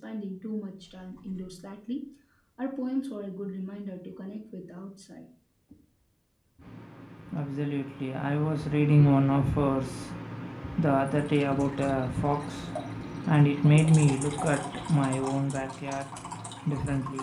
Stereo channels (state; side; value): identical; both; correlation 1.00